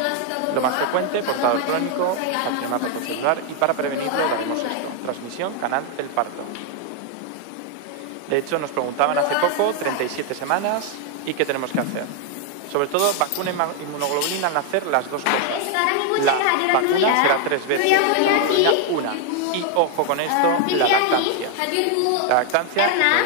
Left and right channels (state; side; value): different; both; correlation 0.01